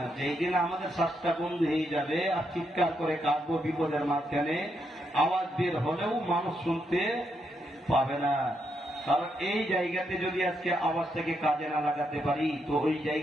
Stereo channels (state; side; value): normal; both; correlation 0.80